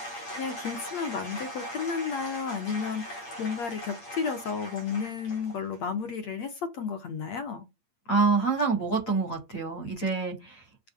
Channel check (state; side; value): late; right; 8.6 ms